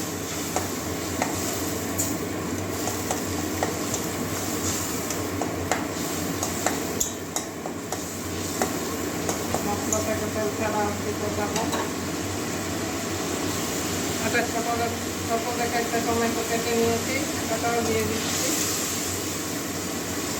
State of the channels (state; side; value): identical; both; correlation 1.00